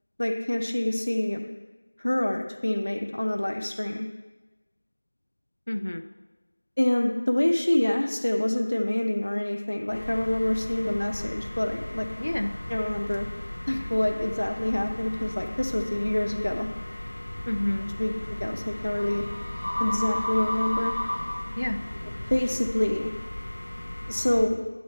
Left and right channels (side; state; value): both; inverted; correlation -1.00